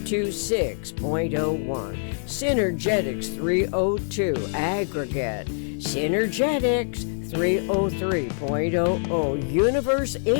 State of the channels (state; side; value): silent; right; digital silence